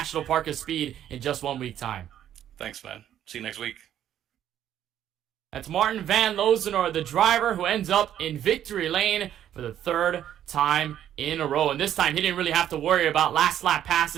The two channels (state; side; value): quieter; left; 10.8 dB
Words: Park of Speed in just 1 week time. Thanks, man. See you next week. That's Martin van Loosenoord, the driver who ends up in victory lane for the 3rd time in a row. And this time, he didn't really have to worry about last lap